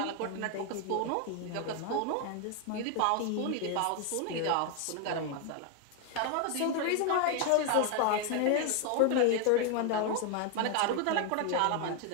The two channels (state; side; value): different; both; correlation 0.00